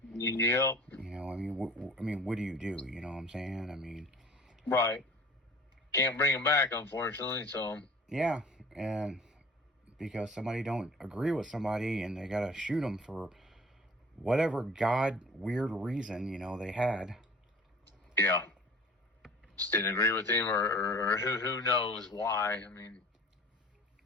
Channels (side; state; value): both; normal; correlation 0.46